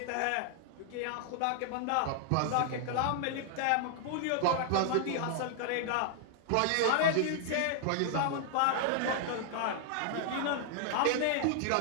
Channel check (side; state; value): both; different; correlation 0.00